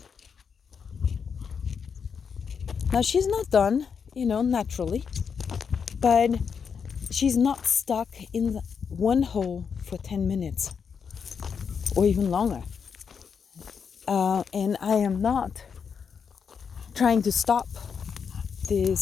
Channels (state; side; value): quieter; right; 6.4 dB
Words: Now she's not done, naturally, but she's not stuck in one hole for 10 minutes or even longer. And I am not trying to stop